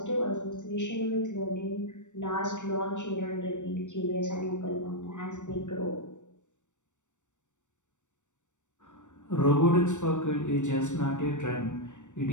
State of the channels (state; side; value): late; right; 0.85 ms